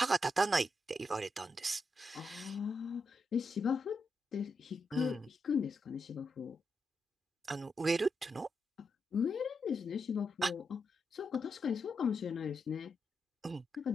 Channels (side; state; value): both; normal; correlation 0.84